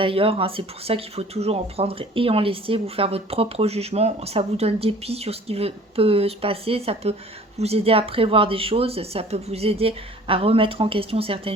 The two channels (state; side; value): normal; both; correlation 0.49